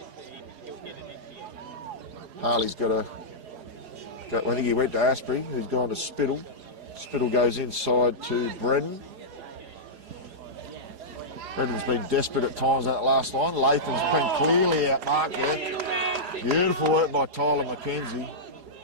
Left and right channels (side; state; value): left; late; 4.8 ms